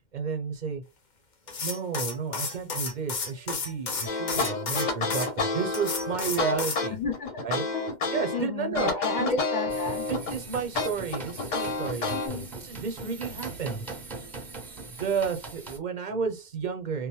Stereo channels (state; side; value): late; right; 2.1 ms